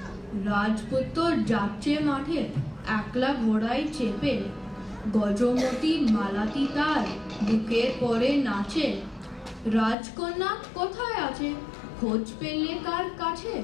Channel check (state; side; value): drops out; right; at 10.0 s